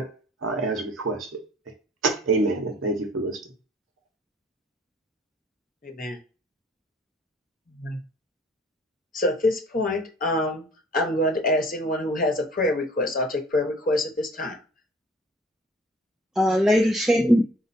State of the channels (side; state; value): both; normal; correlation 0.54